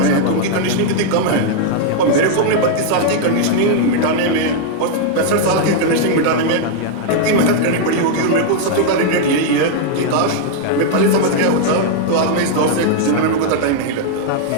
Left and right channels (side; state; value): both; different; correlation 0.00